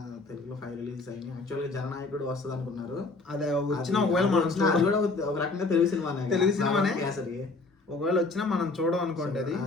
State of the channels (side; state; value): right; quieter; 3.5 dB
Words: తెలుగులో 5 రిలీజెస్ అయినాయి. యాక్చువల్గా జననాయకుడు వస్తుంది అనుకున్నారు. అదే వచ్చినా ఒకవేళ మనం అది కూడా ఒక రకంగా తెలుగు సినిమానే. తెలుగు సినిమానే. కేసరి ఒకవేళ వచ్చినా మనం చూడం అనుకోండి. అది